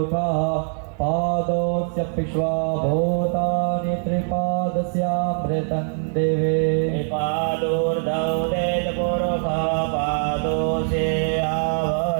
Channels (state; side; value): silent; left; digital silence